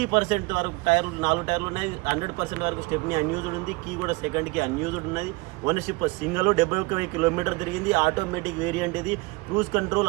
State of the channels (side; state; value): left; quieter; 25.0 dB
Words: వరకు టైర్లు, 4 టైర్లు ఉన్నాయి. 100% వరకు స్టెప్ని అన్యూజ్డ్ ఉంది. కీ కూడా సెకండ్కి అన్యూజ్డ్ ఉన్నది. ఓనర్షిప్ సింగిల్, 71 కిలోమీటర్ తిరిగింది. ఆటోమేటిక్ వేరియంట్ ఇది. Cruise